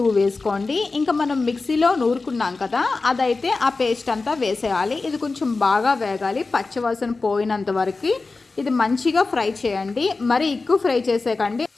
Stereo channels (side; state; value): right; quieter; 3.8 dB